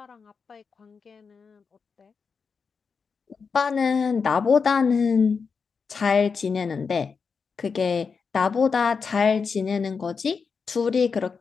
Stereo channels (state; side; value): quieter; right; 5.4 dB